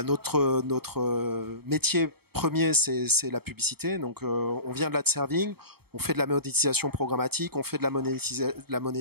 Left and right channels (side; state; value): left; late; 0.96 ms